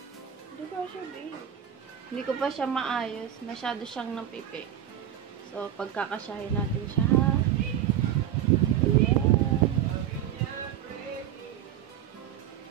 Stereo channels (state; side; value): quieter; left; 10.5 dB